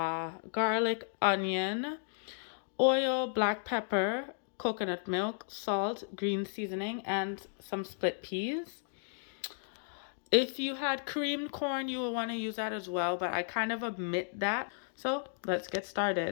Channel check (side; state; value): right; silent; digital silence